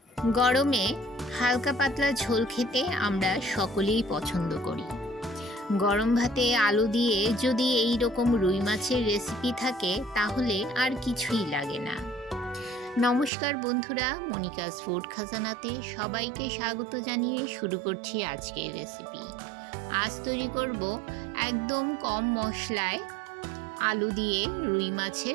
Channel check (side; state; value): left; drops out; at 13.3 s